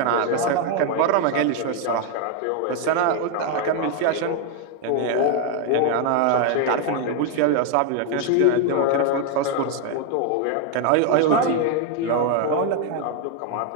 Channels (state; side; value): different; both; correlation 0.01